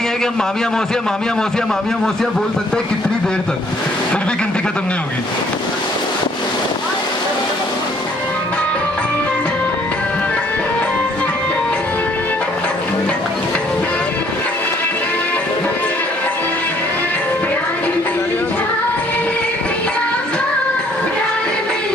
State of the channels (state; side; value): normal; both; correlation 0.62